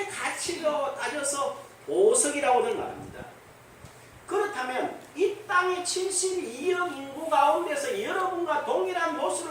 가치로 따져서 보석이라고들 말합니다. 그렇다면 이 땅의 72억 인구 가운데서 여러분과 동일한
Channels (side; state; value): both; identical; correlation 1.00